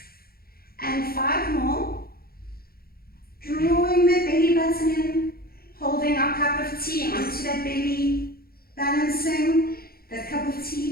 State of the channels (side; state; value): right; late; 0.44 ms